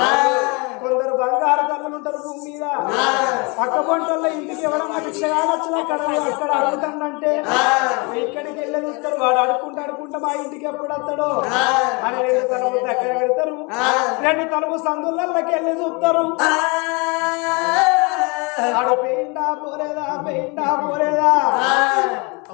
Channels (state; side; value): quieter; right; 29.8 dB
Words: కొందరు బంగారు తల్లులు ఉంటారు భూమి మీద పక్క పొంటల్లో ఇంటికి ఎవరన్నా భిక్షగాడు వచ్చినా అక్కడ అడుగుతాడంటే ఇక్కడికి వెళ్ళి చూస్తారు వాడు అడుక్కుంటా మా ఇంటికి ఎప్పుడు వస్తాడో అని 2 తలుపు దగ్గర పెడతారు 2 తలుపు సందులకి వెళ్ళి చూస్తారు ఆడు పెయిండా పోలేదా